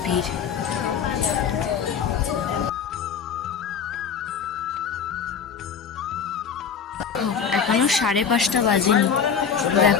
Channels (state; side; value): quieter; right; 6.9 dB